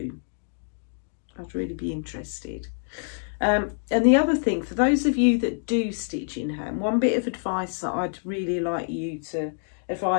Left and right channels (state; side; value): silent; right; 61 dB below the other